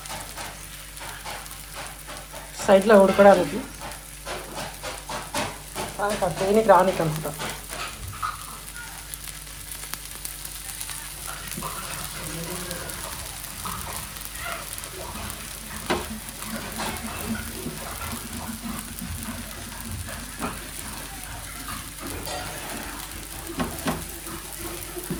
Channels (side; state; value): both; identical; correlation 1.00